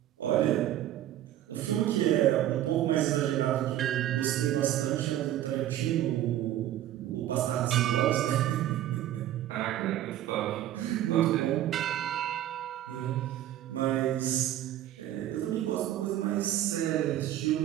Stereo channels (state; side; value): quieter; left; 12.7 dB